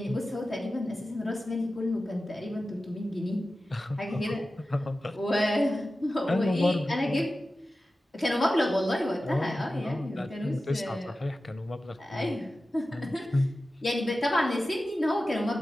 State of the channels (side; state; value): both; normal; correlation 0.94